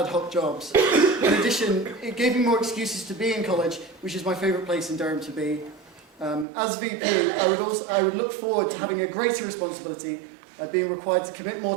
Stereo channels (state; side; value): drops out; left; at 6.5 s